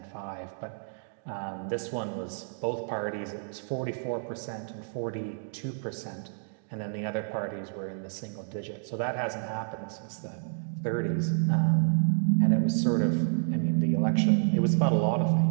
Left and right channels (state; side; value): silent; left; digital silence